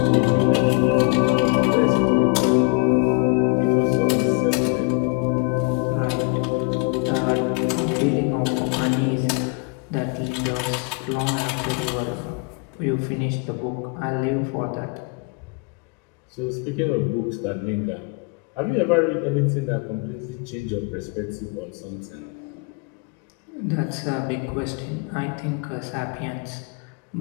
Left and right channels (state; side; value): quieter; right; 32.9 dB